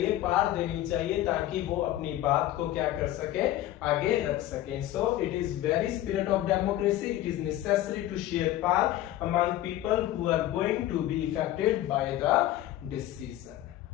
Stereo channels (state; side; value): quieter; right; 14.1 dB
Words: पावर देनी चाहिए, ताकि वो अपनी बात को क्या कर सके, आगे रख सके। So it is very spirit of democracy, it is necessary to share power among people who are going to be affected by the